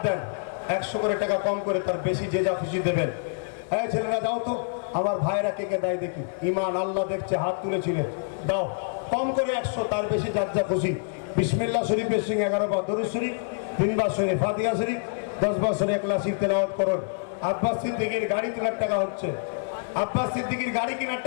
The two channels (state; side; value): silent; right; digital silence